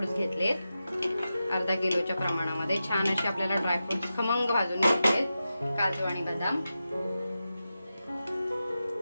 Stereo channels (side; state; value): both; inverted; correlation -0.91